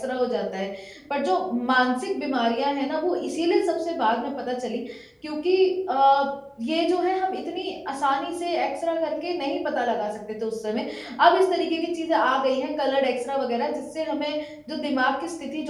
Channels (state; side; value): identical; both; correlation 1.00